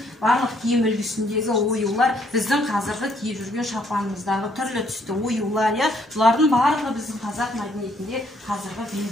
барлық киім үлгісіндегі оюлар біздің қазіргі киіп жүрген шапанымыздағы түрлі түсті оюлар, бұлардың барлығы біздің қазақ мәдениетінде қазіргі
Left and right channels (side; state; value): both; normal; correlation 0.68